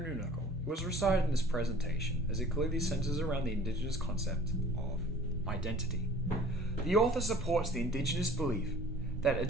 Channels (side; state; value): both; normal; correlation 0.48